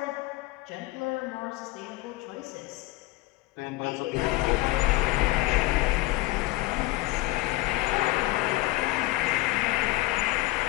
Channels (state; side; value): quieter; right; 19.4 dB